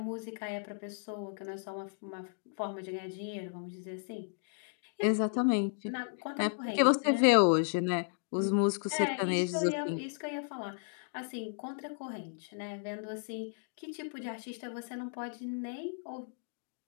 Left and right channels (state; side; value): silent; right; digital silence